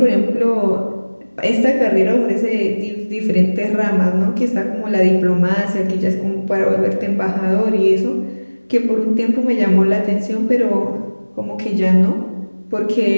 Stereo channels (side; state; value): both; inverted; correlation -1.00